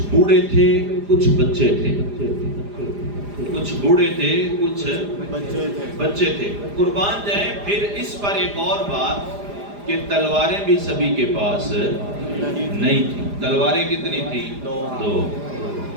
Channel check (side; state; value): left; late; 4.9 ms